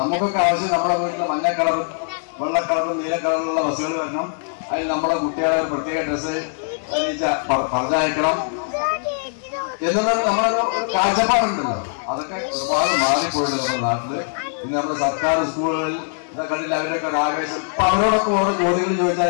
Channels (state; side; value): silent; right; digital silence